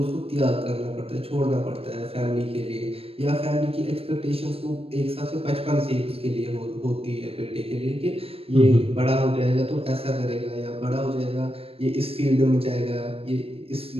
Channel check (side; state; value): left; late; 0.28 ms